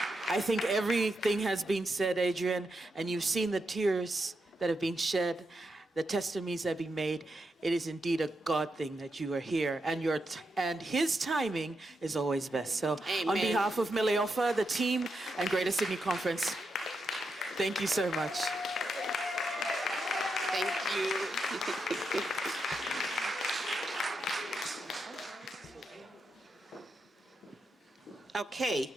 I think everything has been said, Adrienne, and you've seen the tears that have been shed, the testimonies that have been made. It is indeed a God thing that you are here, and his timing is always best. So Amen. On behalf of Mileofa, the team, and Greater Sydney Conference, thank you so much. Thank you. Okay,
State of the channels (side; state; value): both; normal; correlation 0.84